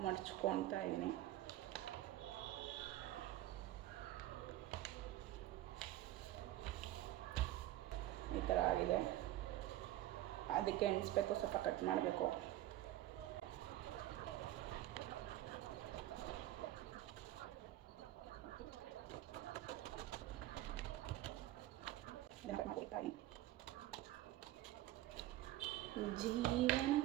ಮಡ್ಚ್ಕೊತಾ ಇದ್ದೀನಿ. ಈ ಥರ ಆಗಿದೆ. ಅದಕ್ಕೆ ಎಣಿಸ್ಬೇಕು, ಸ್ವಲ್ಪ ಕಟ್ ಮಾಡಬೇಕು.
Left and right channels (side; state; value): left; quieter; 14.8 dB